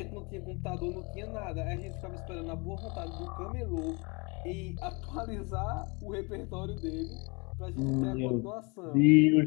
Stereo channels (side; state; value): right; quieter; 29.5 dB